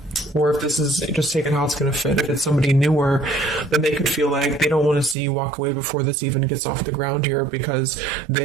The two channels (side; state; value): left; drops out; at 5.2 s